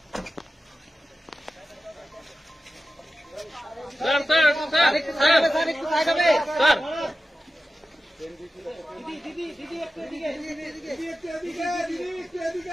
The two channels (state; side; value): normal; both; correlation 0.93